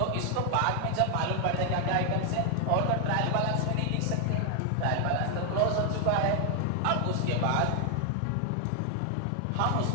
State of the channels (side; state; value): both; different; correlation 0.00